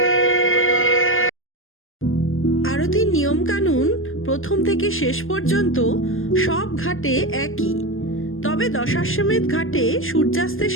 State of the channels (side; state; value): right; late; 0.59 ms